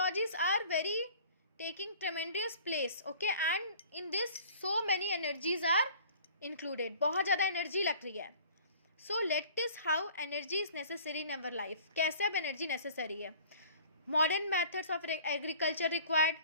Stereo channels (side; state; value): both; inverted; correlation -0.49